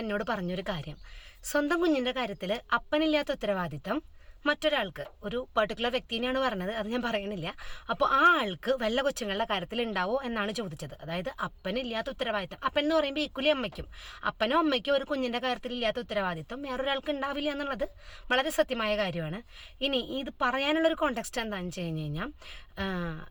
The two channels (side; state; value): both; identical; correlation 1.00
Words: എന്നോട് പറഞ്ഞൊരു കാര്യം, സ്വന്തം കുഞ്ഞിൻ്റെ കാര്യത്തിൽ അപ്പനില്ലാത്ത ഉത്തരവാദിത്തം മറ്റൊരാൾക്ക്, ഒരു പെർട്ടിക്കുലർ വ്യക്തിനെയാണ് പറഞ്ഞത്, അത് ഞാൻ പറയണില്ല. അപ്പോൾ ആ ആൾക്ക് വല്ല കൊച്ചുങ്ങളുടെ കാര്യത്തിൽ ഉണ്ടാവോ എന്നാണ് ചോദിച്ചത്. അതായത് അപ്പനില്ലാത്ത ഉത്തരവാദിത്തം, അപ്പൻ എന്ന് പറയുമ്പോൾ ഈക്വലി അമ്മയ്ക്കും, അപ്പനോ അമ്മയ്ക്കോ ഒരു കുഞ്ഞിൻ്റെ കാര്യത്തിൽ ഇല്ലാത്ത ഉത്തരവാദിത്തം വേറൊരാൾക്ക് ഉണ്ടാവില്ല എന്നുള്ളത് വളരെ സത്യമായ കാര്യമാണ്. ഇനി ഇത് പറയാനുള്ളൊരു കോണ്ടെക്സ്റ്റ് എന്താണെന്ന് വെച്ച് കഴിഞ്ഞ് കഴിഞ്ഞാൽ,